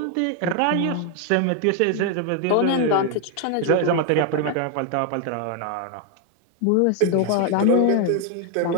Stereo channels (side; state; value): both; different; correlation 0.01